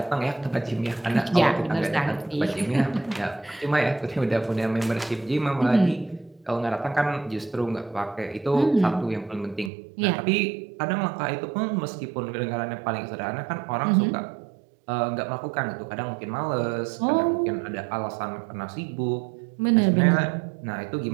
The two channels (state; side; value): drops out; left; at 9.7 s